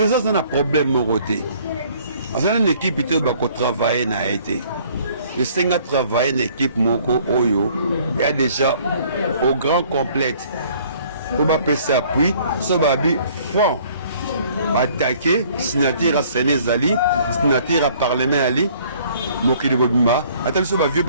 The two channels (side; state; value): both; inverted; correlation -0.57